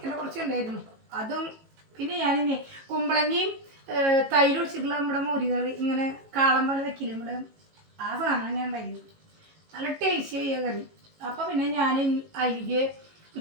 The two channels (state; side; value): late; left; 18 ms